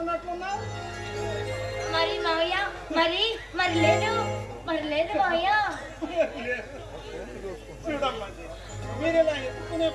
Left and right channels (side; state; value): both; identical; correlation 1.00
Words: మరి మావయ్య మరి మరి లేదు మావయ్య. చూడమ్మా జయ, మీరు ఇలా ఎత్తుకునే